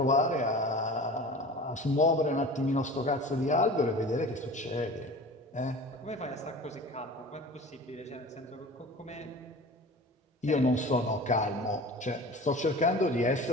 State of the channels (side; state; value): both; normal; correlation 0.38